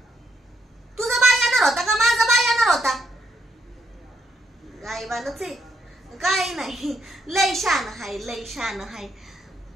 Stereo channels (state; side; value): normal; both; correlation 0.76